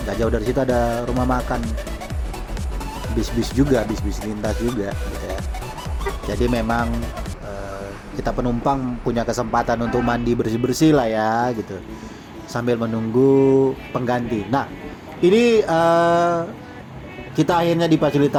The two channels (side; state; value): both; identical; correlation 1.00